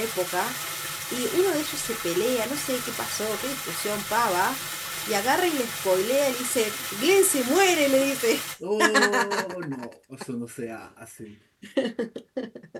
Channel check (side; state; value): both; identical; correlation 1.00